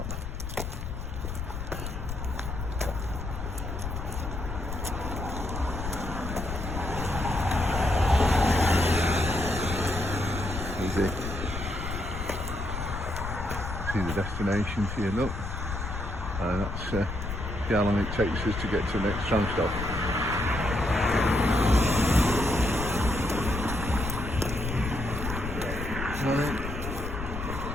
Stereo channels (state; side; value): noise; left; rumble, 6 dB below the sound